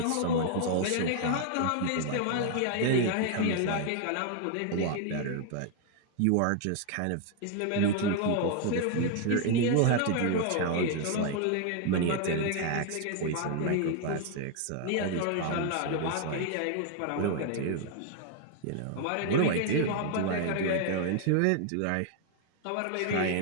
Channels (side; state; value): both; different; correlation 0.00